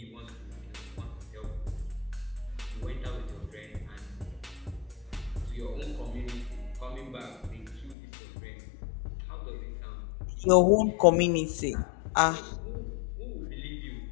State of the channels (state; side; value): drops out; right; at 8.0 s